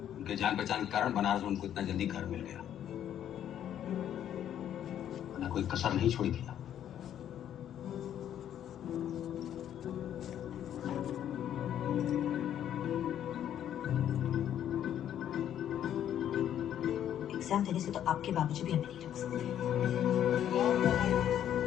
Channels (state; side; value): quieter; right; 10.4 dB